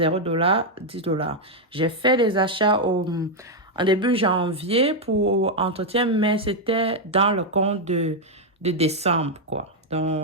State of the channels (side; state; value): both; normal; correlation 0.00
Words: $, 10 $. J'ai fait des achats en début janvier pour entretien, mais c'était dans le compte de décembre, quoi.